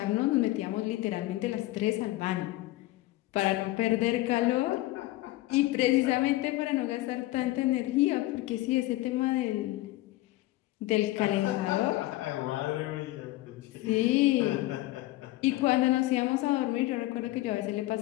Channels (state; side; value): quieter; right; 17.7 dB